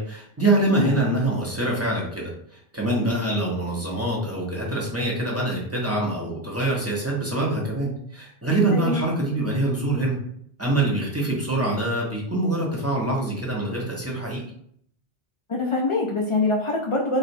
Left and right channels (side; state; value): both; normal; correlation 0.13